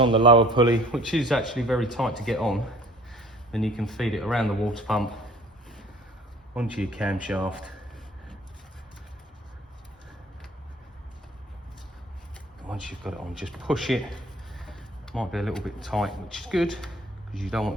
the lower pulley, which is actually very tight to get on, then you can feed it around the water pump onto your camshaft. Once you've got it on, just push it. Might be a little bit tight, which is good because you don't want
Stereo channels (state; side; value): normal; both; correlation 0.51